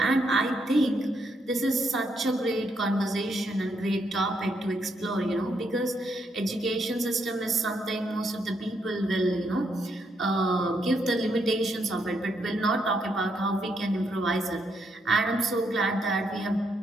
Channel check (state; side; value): normal; both; correlation 0.77